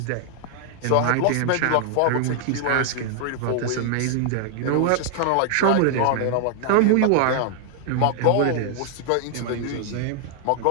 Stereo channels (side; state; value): both; different; correlation 0.00